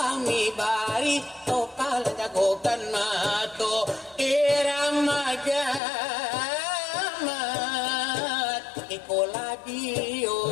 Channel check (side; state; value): right; drops out; at 5.8 s